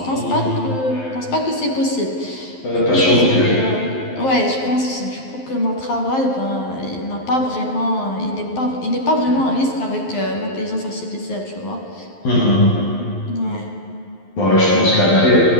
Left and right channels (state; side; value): late; right; 11 ms